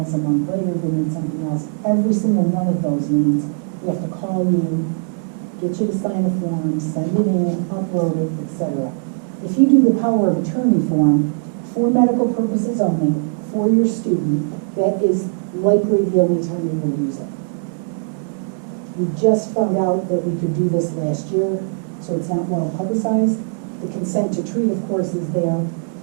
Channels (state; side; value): silent; left; 66 dB below the other